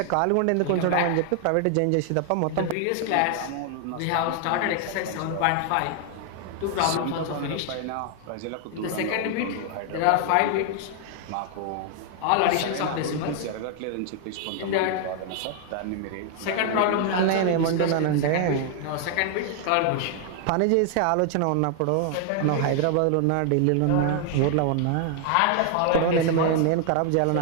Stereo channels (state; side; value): different; both; correlation 0.00